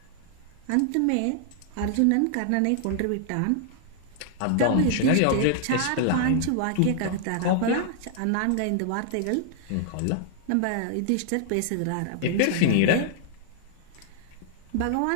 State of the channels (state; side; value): different; both; correlation -0.01